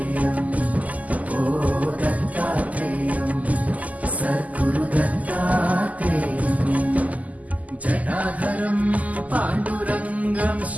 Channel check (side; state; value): left; late; 0.075 ms